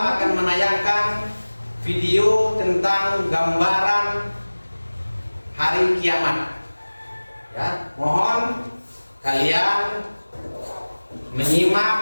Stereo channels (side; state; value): both; inverted; correlation -1.00